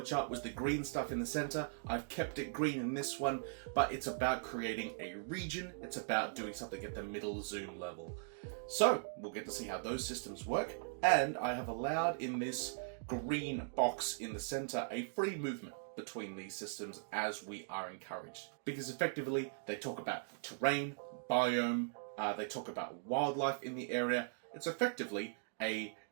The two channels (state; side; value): silent; left; digital silence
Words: was the green stuff in the center. I've kept it green in this one, but it's about creating a region. It's about doing something at the middle zoom level. So we'll get to see how those systems work, and I have allowed in this green box in the center a free movement between these systems as we are encouraged, because effectively they talk about terrain, biome, they talk about wildlife in the area. It's effectively a